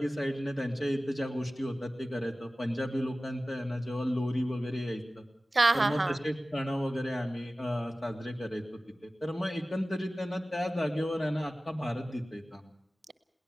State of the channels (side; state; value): both; normal; correlation 0.96